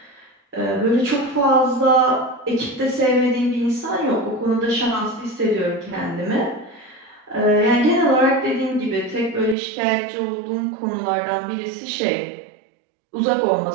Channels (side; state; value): left; drops out; at 9.6 s